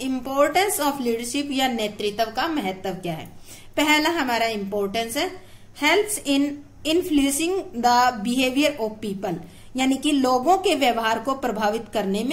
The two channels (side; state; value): both; identical; correlation 1.00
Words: इम्पोर्टेंस ऑफ लीडरशिप या नेतृत्व का महत्व क्या है। पहला हमारा इम्पोर्टेंस है helps in influencing the behaviour of people, यानी कि लोगों के व्यवहार को प्रभावित करने